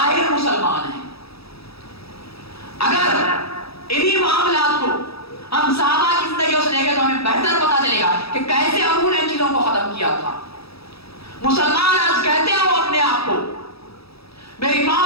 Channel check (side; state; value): right; late; 0.77 ms